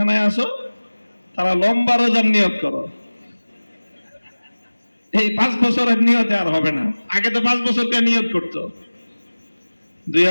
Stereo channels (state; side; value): inverted; both; correlation -1.00